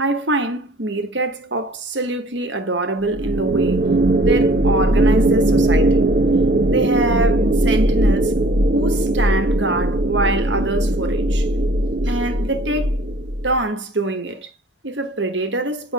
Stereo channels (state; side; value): normal; both; correlation 0.52